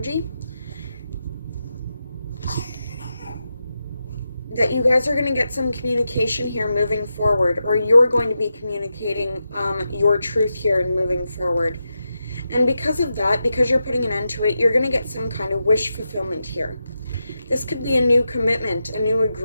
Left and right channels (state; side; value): inverted; both; correlation -0.88